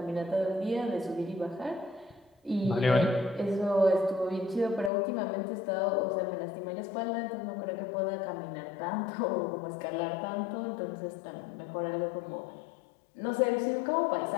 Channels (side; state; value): right; drops out; at 4.9 s